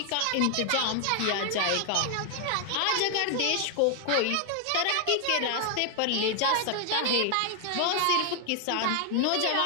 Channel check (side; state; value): both; different; correlation 0.00